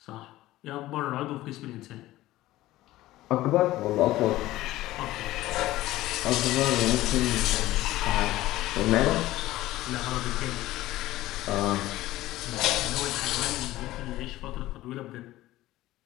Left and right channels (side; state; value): right; quieter; 16.3 dB